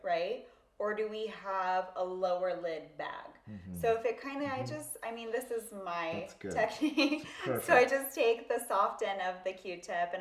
Right? Or do we have a lower lid bag? So if it kind of, this is my That's good. technique. Perfect. So I just take the soft end of the Q-tip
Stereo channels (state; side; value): identical; both; correlation 1.00